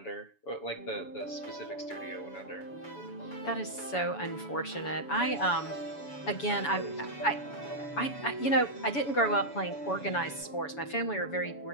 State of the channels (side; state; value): right; late; 7.1 ms